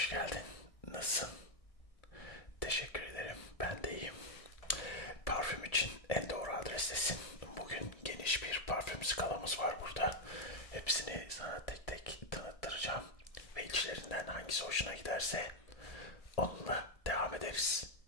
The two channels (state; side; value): late; right; 1.6 ms